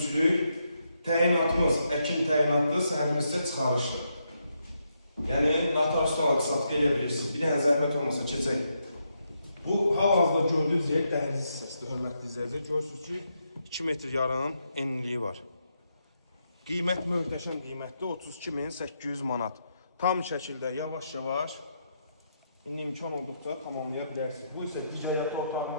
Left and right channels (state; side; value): inverted; both; correlation -0.81